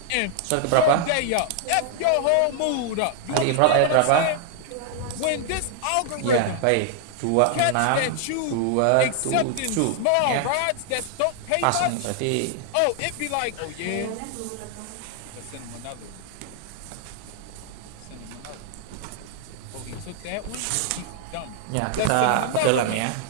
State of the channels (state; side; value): different; both; correlation 0.00